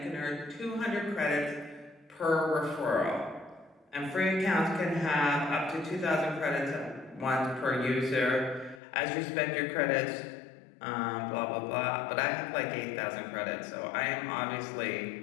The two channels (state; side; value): drops out; right; at 8.8 s